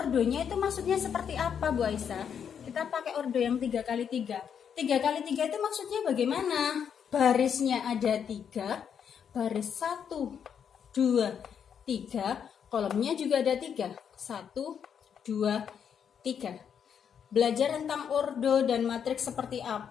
itu maksudnya seperti apa, Bu Aisyah? Kita pakai ordo yang 3x3. 3x3 itu maksudnya bagaimana? Barisnya ada 3, baris 1, 2, 3, kolomnya juga ada 3. 1, 2, 3. Belajar tentang ordo dan matriks seperti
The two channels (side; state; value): right; quieter; 7.8 dB